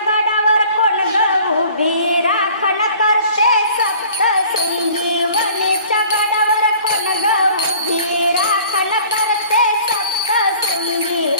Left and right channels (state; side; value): inverted; both; correlation -0.50